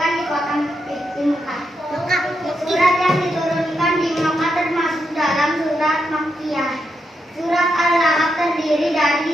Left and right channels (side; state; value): both; normal; correlation 0.83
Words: di kota Mekah. Surat yang diturunkan di Mekah termasuk dalam surat Makkiyah. Surat Al-Ahzab terdiri